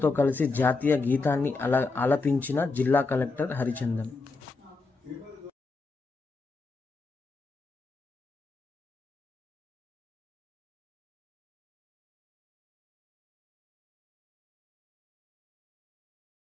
కలిసి జాతీయ గీతాన్ని ఆలపించిన జిల్లా కలెక్టర్ హరిచందన్.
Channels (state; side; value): quieter; right; 3.8 dB